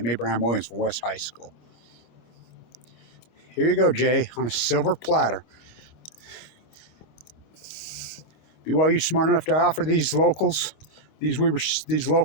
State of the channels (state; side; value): late; right; 25 ms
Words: Abraham Williams from West High School. Here you go, Jay, on a silver platter. BYU smart enough to offer these locals, these